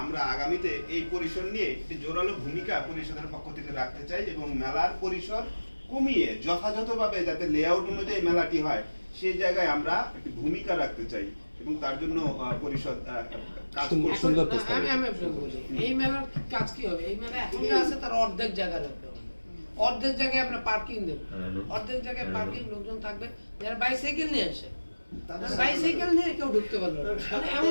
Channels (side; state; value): both; inverted; correlation -1.00